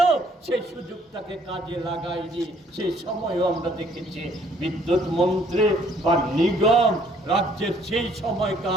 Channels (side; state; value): both; normal; correlation 0.62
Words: সেই সুযোগটাকে কাজে লাগায়নি। সেই সময়ও আমরা দেখেছি বিদ্যুৎ মন্ত্রী বা নিগম রাজ্যের সেই